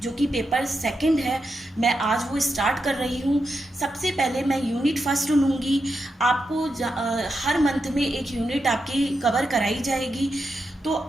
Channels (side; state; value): both; normal; correlation 0.86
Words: जो कि पेपर सेकंड है, मैं आज वो स्टार्ट कर रही हूँ। सबसे पहले मैं यूनिट फर्स्ट लूँगी। आपको हर मंथ में एक यूनिट आपकी कवर कराई जाएगी। तो